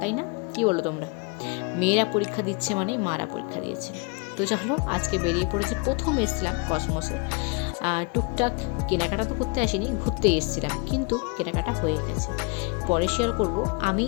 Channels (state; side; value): quieter; right; 30.6 dB